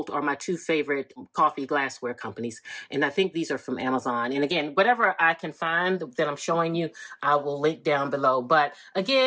are my two favorite coffee glassware companies. And I think these are from Amazon. And again, whatever I can find that I'm showing you, I will link down below. But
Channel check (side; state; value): both; identical; correlation 1.00